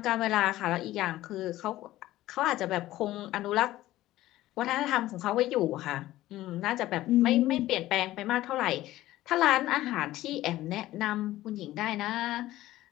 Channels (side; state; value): right; quieter; 15.6 dB